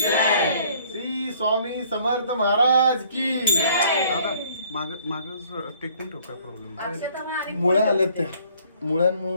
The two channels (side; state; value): both; inverted; correlation -0.59